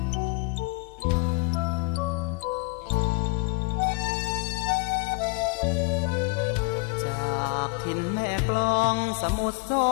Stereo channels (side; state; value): right; quieter; 26.4 dB